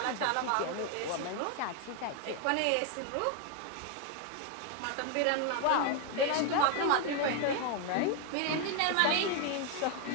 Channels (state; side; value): different; both; correlation 0.01